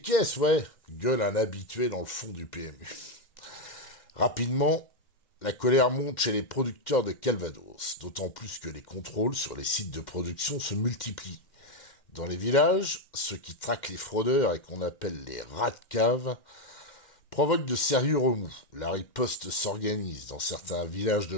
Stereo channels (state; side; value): late; right; 2.1 ms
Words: caisses, ouais, gueule un habitué dans le fond du PMU. Rapidement, la colère monte chez les producteurs de Calvados, d'autant plus que les contrôles sur les sites de production se multiplient. Dans les villages, ceux qui traquent les fraudeurs et qu'on appelle les rats de cave provoquent de sérieux remous. La riposte s'organise. Dans certains villages de